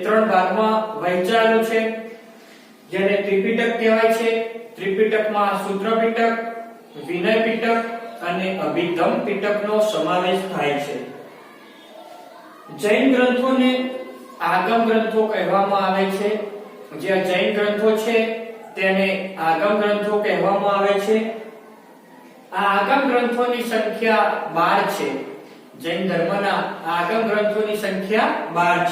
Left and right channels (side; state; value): both; identical; correlation 1.00